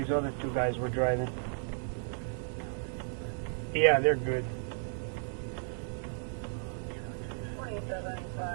other two guys were driving. Yeah, they're good.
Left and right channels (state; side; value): silent; left; digital silence